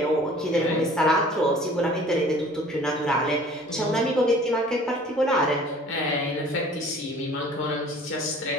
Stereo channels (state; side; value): normal; both; correlation 0.49